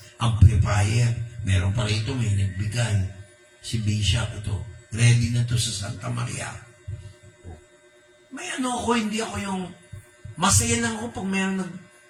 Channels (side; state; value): both; identical; correlation 1.00